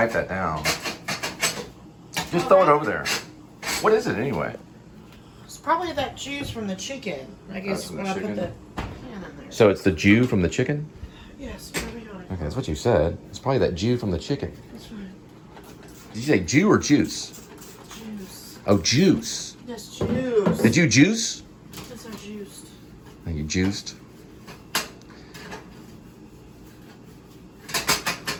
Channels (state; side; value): identical; both; correlation 1.00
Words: that down. Just throw it over there. What is it anyway? It's probably that juice from the chicken. I guess from when the I put chicken? the pan in there. So it's the Jew from the chicken? Yes, probably. Okay, that's what you said. It's probably that Jew from the chicken. That's right. Did you say Jew or juice? Juice. Oh, juice. Yes, juice. Did you juice? Yes, I juiced. Oh, you juiced?